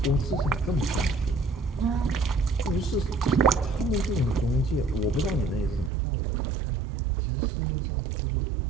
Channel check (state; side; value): drops out; left; at 5.9 s